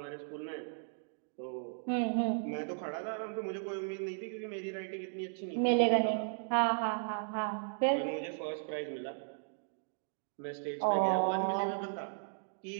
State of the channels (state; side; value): silent; left; digital silence